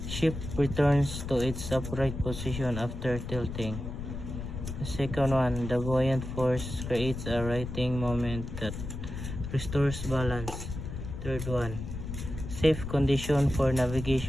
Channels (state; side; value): noise; left; rumble, 7 dB below the sound